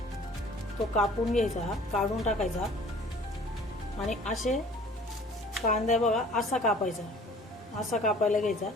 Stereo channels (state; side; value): normal; both; correlation 0.50